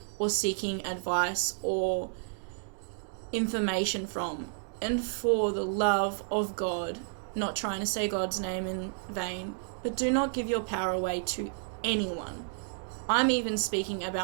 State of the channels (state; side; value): silent; left; digital silence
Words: or seeking advice or information from. And for the love of God, not trying to say God's name in vain, but do not give your power away to anyone. I'm even speaking